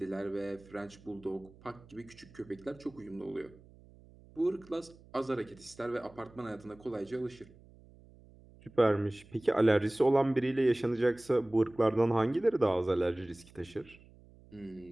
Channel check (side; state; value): right; noise; hum, 24 dB below the sound